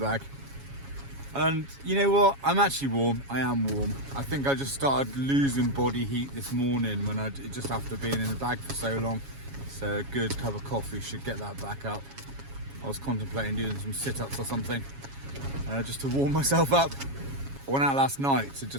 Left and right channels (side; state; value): left; late; 7.2 ms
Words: And you know what? I'm actually warm. I am warm. I think I just started losing body heat this morning when just after being in the bag for so long. So a good cup of coffee should get that back up. I was contemplating doing some sit-ups or something, just to warm myself up. I went out last night to